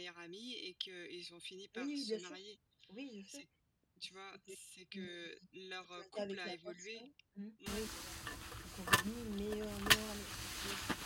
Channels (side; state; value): both; identical; correlation 1.00